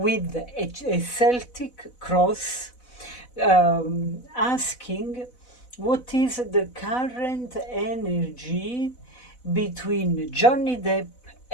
a Celtic cross, asking what is the current energy between Johnny Depp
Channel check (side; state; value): right; late; 4.0 ms